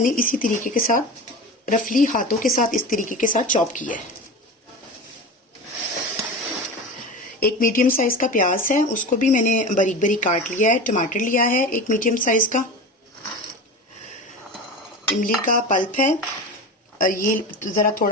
इसी तरीके के साथ रफली हाथों के साथ इस तरीके के साथ चॉप किया है। 1 मीडियम साइज का प्याज है, उसको भी मैंने बारीक बारीक काट लिया है। टमाटर लिया है 1 मीडियम साइज का। इमली का पल्प है, ये जरा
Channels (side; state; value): both; normal; correlation 0.29